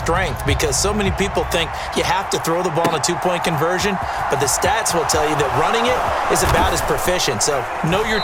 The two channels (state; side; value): identical; both; correlation 1.00